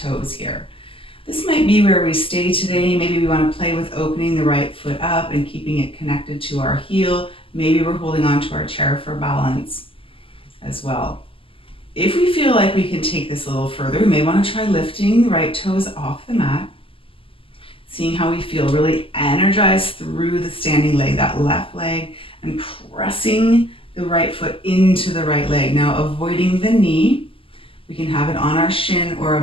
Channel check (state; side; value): late; right; 0.26 ms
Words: here. This might be where we stay today. Maybe we want to play with opening the right foot up and keeping it connected to our heel. Maybe we're holding on to our chair for balance as well. If we feel like we can take this a little further, we may want to try lifting the right toes off the mat, seeing how we feel, really energize through the standing leg, that left leg, and pressing the right foot into the right leg. Now, avoiding the knee, we can have it on our shin or